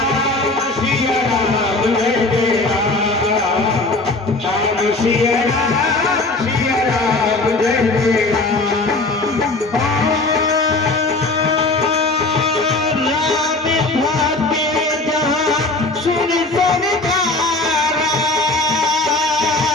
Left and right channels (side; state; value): right; quieter; 3.1 dB